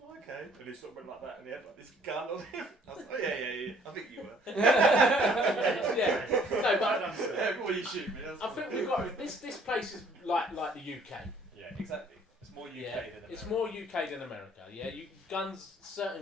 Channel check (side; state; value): both; normal; correlation 0.59